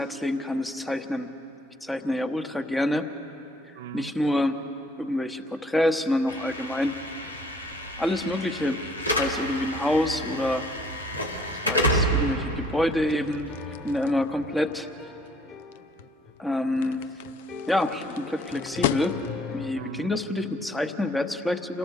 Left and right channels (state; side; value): normal; both; correlation 0.59